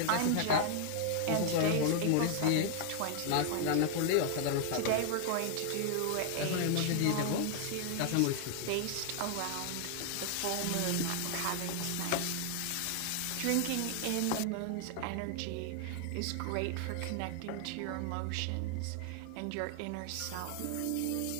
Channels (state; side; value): different; both; correlation 0.00